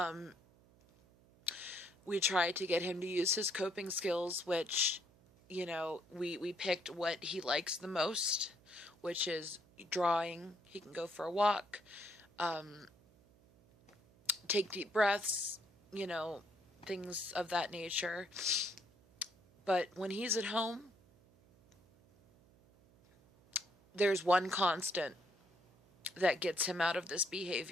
We try to get him to use his coping skills, which, we picked what he likes the most, which is drawing. He can go for a walk, take deep breaths, things of that nature. But when he's at home, there's one constant that gets him out of this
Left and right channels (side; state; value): right; noise; hum, 28 dB below the sound